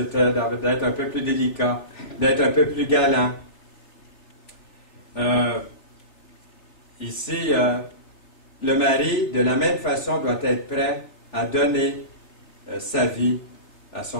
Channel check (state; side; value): late; right; 3.5 ms